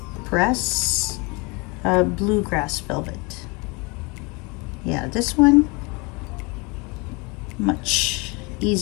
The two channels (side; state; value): right; quieter; 28.4 dB